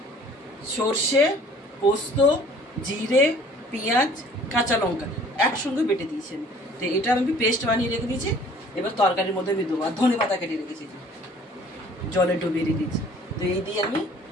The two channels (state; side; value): normal; both; correlation 0.53